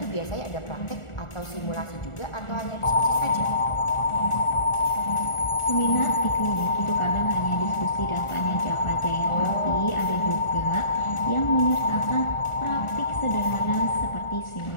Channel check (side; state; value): right; late; 1.4 ms